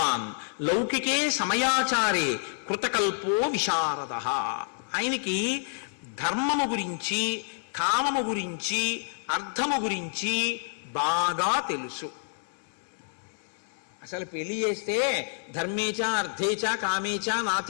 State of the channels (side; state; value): right; silent; 59 dB below the other